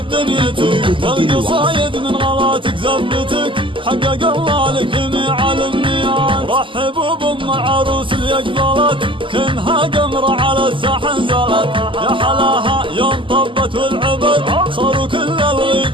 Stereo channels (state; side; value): late; left; 0.25 ms